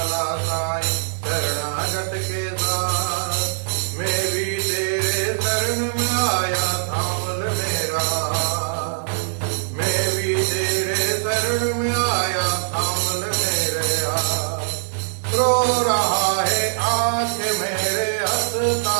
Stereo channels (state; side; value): silent; left; digital silence